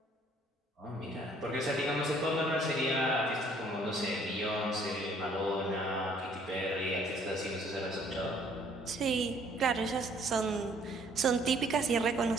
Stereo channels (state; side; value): normal; both; correlation 0.61